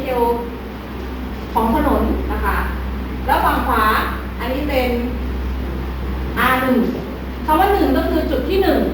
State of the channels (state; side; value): identical; both; correlation 1.00